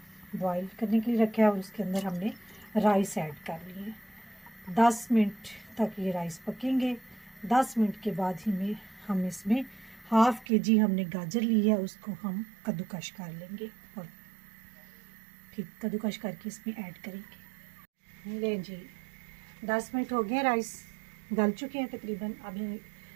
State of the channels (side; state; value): left; drops out; at 10.5 s